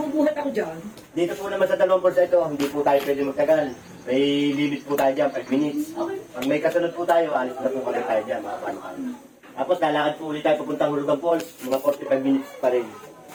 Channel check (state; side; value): identical; both; correlation 1.00